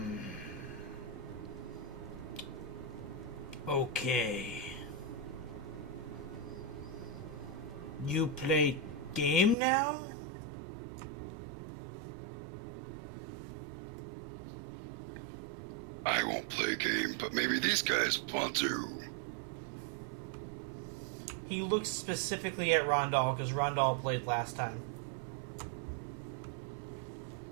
Okay. You play game now? I won't play a game, but maybe these guys want to. He looks specifically at Rondal because Rondal played last time.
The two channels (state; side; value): drops out; left; at 9.6 s